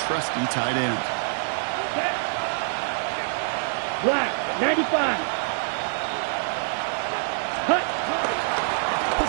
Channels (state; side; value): silent; left; digital silence